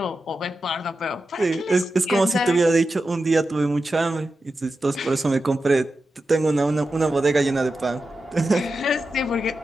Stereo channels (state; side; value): normal; both; correlation 0.91